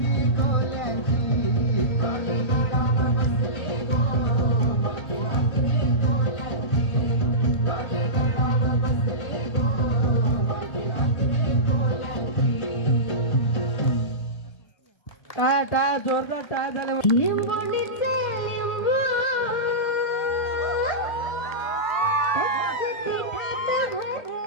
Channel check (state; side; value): late; right; 1.3 ms